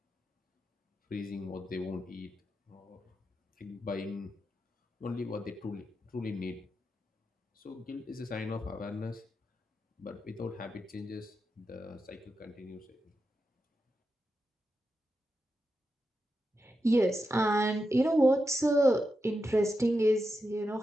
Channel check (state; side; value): normal; both; correlation 0.88